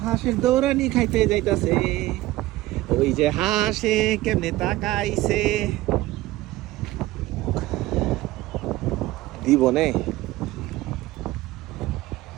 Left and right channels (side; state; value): left; quieter; 17.2 dB